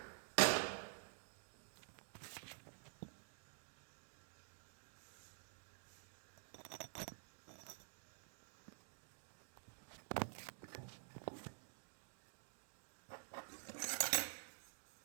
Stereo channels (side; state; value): left; silent; digital silence